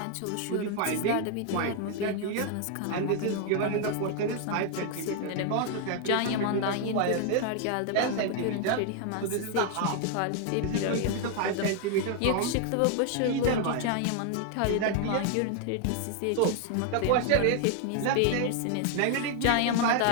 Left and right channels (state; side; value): different; both; correlation 0.00